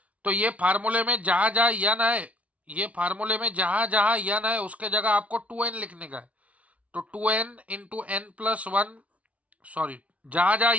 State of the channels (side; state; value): left; late; 0.066 ms